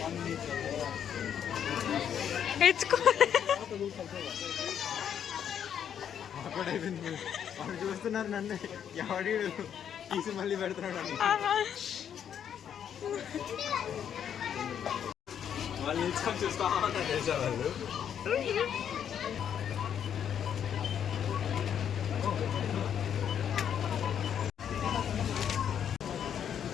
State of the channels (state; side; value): quieter; right; 8.8 dB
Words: ఎచ్చుకో. వాళ్ళు చూస్తున్నారు నన్ను, ఎవడి తీసి మళ్ళీ పెడుతున్నాడు. వాళ్ళు నిల్చుకొని చూస్తా ఉన్నారు తెలుసా వాళ్ళు.